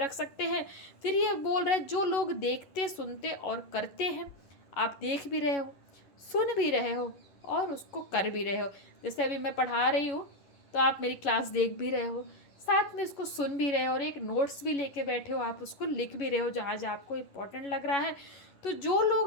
सकते हैं। फिर ये बोल रहे हैं जो लोग देखते, सुनते और करते हैं, आप देख भी रहे हो, सुन भी रहे हो और उसको कर भी रहे हो। जैसे अभी मैं पढ़ा रही हूँ तो आप मेरी क्लास देख भी रहे हो, साथ में इसको सुन भी रहे हो, और एक नोट्स भी लेके बैठे हो, आप उसको लिख भी रहे हो जहाँ जहाँ आपको इम्पोर्टेंट लग रहा है। तो जो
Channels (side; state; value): right; late; 11 ms